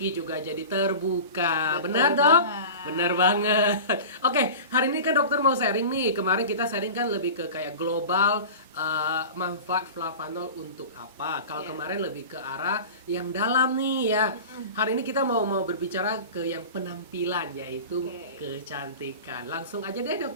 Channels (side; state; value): both; inverted; correlation -0.34